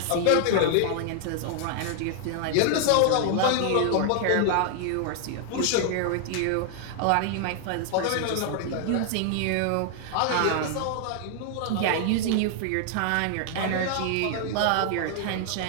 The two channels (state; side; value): different; both; correlation 0.00